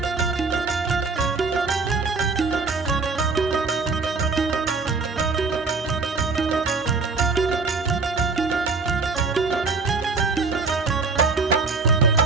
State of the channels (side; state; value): left; quieter; 4.3 dB